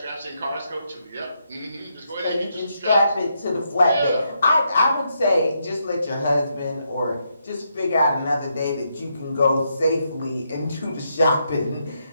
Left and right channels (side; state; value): both; inverted; correlation -0.79